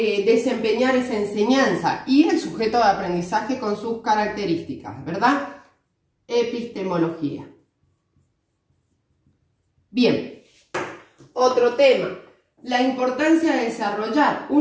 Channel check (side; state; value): both; identical; correlation 1.00